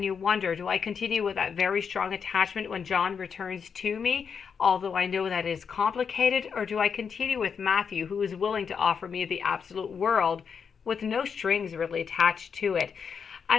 you wonder, do I continue with that very strong attachment when John returns to me, although I know that is complicated, or do I continue with Matthew, who is willing to offer me the absolute world with no strings really attached to it?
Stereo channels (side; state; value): right; quieter; 6.5 dB